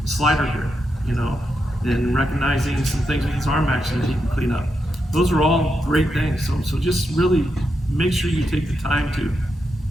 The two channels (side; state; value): both; normal; correlation 0.85